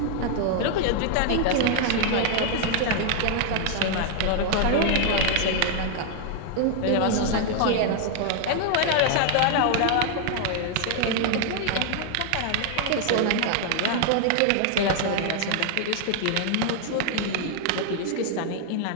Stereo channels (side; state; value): both; different; correlation 0.00